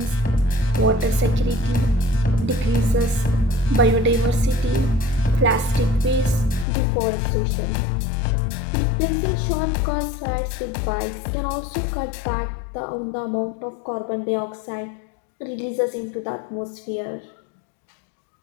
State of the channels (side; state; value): right; drops out; at 6.7 s